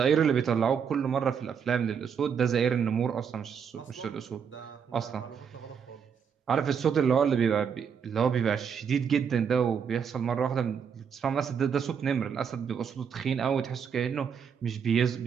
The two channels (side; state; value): left; quieter; 7.1 dB